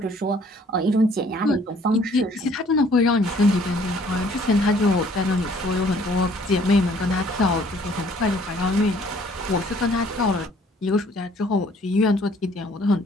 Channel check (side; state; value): both; normal; correlation 0.59